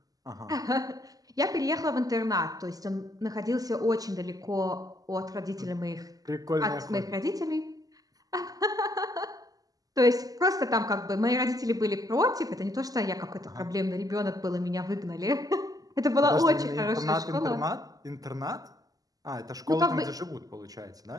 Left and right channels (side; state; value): left; late; 0.17 ms